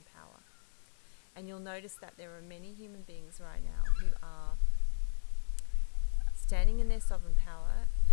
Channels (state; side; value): silent; right; 55 dB below the other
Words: power. And you'll notice that there are many human beings right now who are standing in their sovereign power